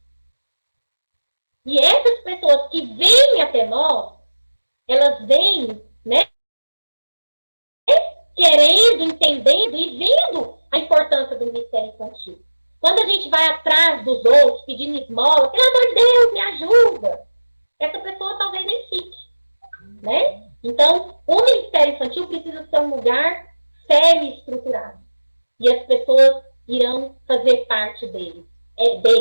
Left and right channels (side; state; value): both; inverted; correlation -1.00